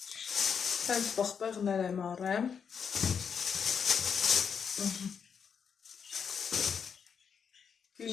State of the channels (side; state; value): right; quieter; 6.8 dB